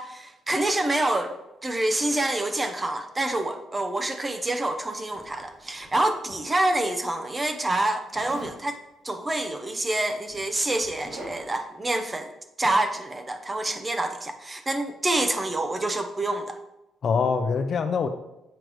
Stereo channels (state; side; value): normal; both; correlation 0.89